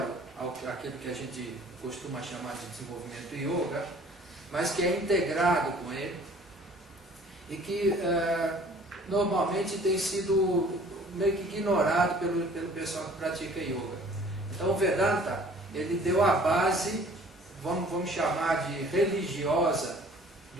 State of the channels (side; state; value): both; normal; correlation 0.52